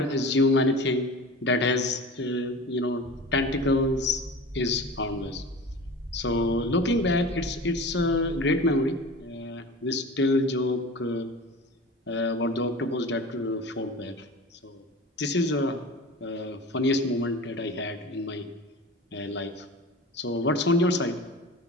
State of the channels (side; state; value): both; normal; correlation 0.36